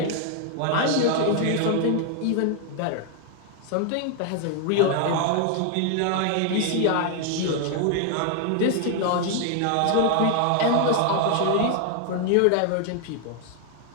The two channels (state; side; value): different; both; correlation 0.00